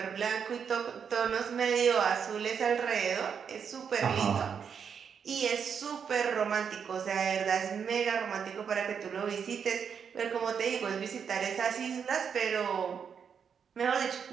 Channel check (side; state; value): left; quieter; 7.0 dB